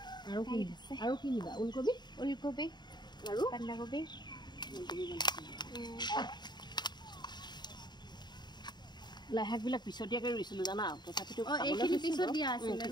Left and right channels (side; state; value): right; late; 0.21 ms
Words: আৰু কি নিবা? ওলকবি আৰু বন্ধাকবি লাই শাকবিলাক পিছতীয়াকৈ ৰুইছিলোঁ জানা, তথাপিতো পিছত দিয়া আছিলে